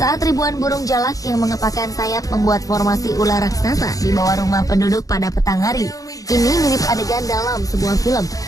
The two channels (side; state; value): right; late; 0.17 ms